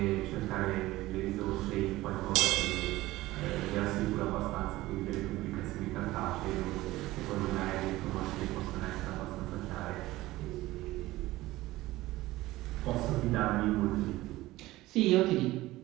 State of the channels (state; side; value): quieter; left; 17.7 dB